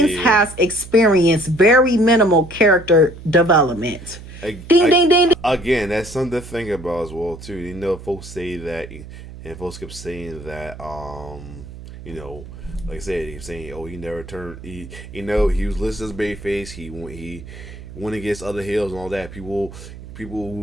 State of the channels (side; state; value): right; noise; hum, 14 dB below the sound